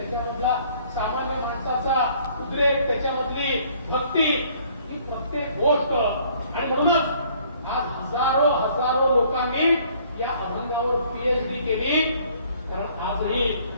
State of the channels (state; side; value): inverted; both; correlation -0.60